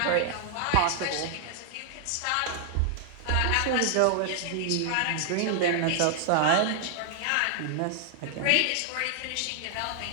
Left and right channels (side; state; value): both; different; correlation 0.00